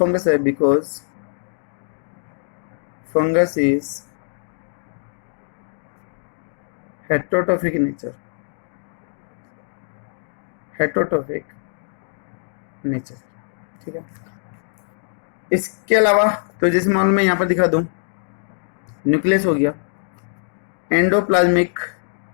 है, because fungus is heterotrophic nature, heterotrophic nature. ठीक है, इसके अलावा तो जैसे मान मैं यहाँ पर दिखा दूं, न्यूक्लियस हो गया, एंडोप्लाज्मिक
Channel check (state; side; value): silent; right; digital silence